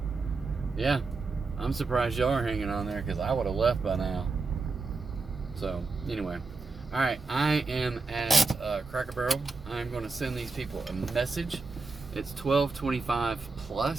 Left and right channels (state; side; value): quieter; left; 4.0 dB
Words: Yeah. I'm surprised y'all are hanging on there, because I would have left by now. So, anyway. All right, I am at Cracker Barrel. I'm going to send these people a message. It's 12:25